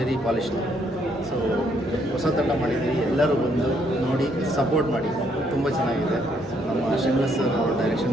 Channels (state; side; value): normal; both; correlation 0.71